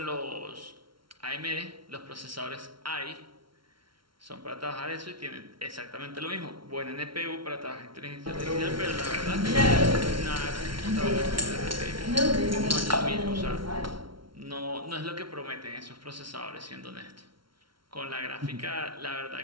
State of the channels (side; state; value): left; late; 0.74 ms